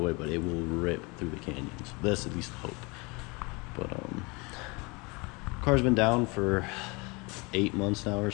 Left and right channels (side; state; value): right; quieter; 27.7 dB